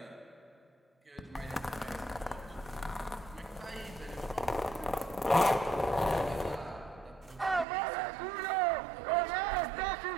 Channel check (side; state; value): left; drops out; at 7.7 s